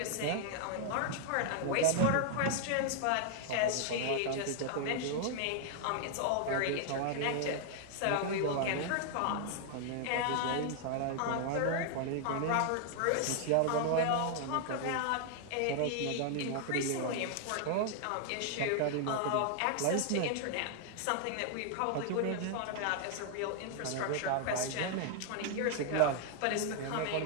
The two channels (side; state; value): both; different; correlation 0.00